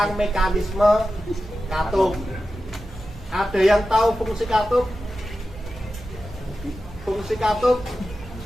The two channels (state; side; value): normal; both; correlation 0.92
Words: mekanisme katup. Ada yang tahu fungsi katup? Fungsi katup?